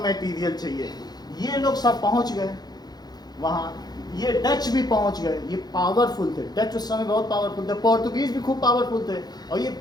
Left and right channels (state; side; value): late; right; 0.19 ms